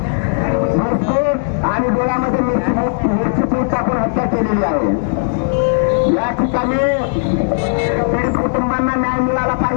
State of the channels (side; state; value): right; silent; digital silence